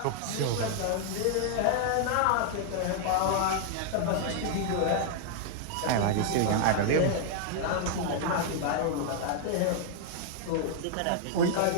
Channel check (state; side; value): different; both; correlation -0.01